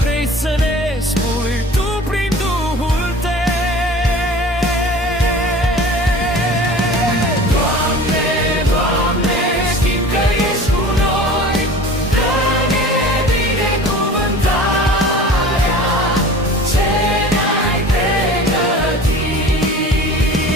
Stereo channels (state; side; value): normal; both; correlation 0.41